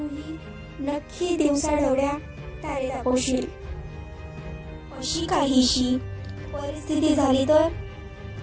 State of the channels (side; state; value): both; identical; correlation 1.00